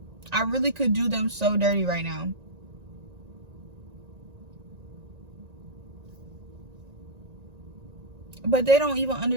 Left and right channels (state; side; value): late; left; 1.9 ms